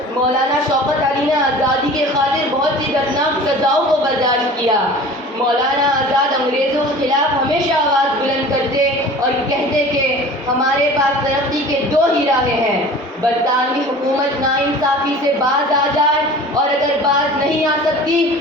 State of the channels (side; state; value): both; normal; correlation 0.41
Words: مولانا شوکت علی نے آزادی کے خاطر بہت سی دردناک سزاؤں کو برداشت کیا. مولانا آزاد انگریزوں کے خلاف ہمیشہ آواز بلند کرتے اور کہتے کہ ہمارے پاس ترقی کے 2 ہی راہیں ہیں، برطانوی حکومت ناانصافی سے باز آ جائے اور اگر باز نہیں آ سکتی